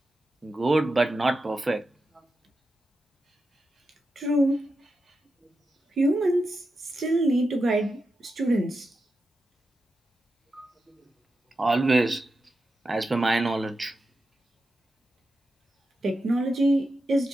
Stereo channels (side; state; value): both; normal; correlation 0.89